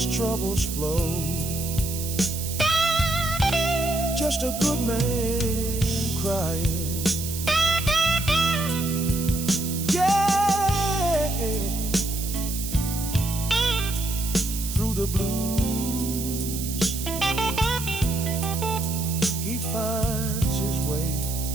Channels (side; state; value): right; noise; hiss, 7 dB below the sound